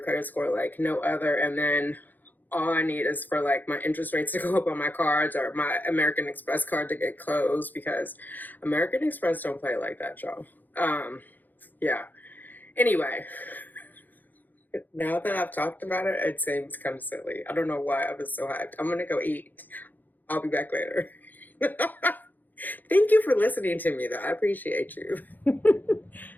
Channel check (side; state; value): right; late; 0.086 ms